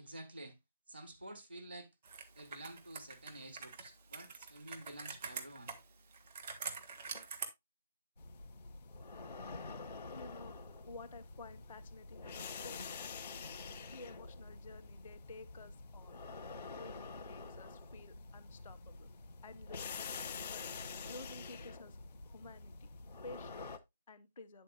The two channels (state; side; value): inverted; both; correlation -0.60